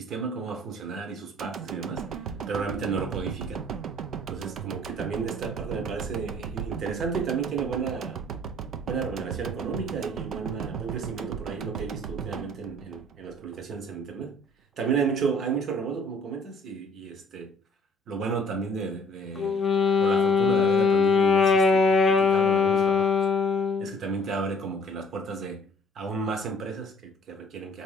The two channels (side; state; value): both; normal; correlation 0.56